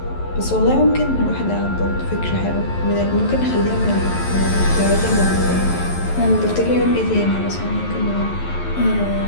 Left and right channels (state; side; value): late; right; 11 ms